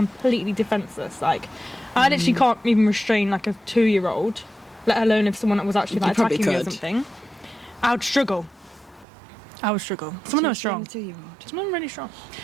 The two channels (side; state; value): left; drops out; at 9.1 s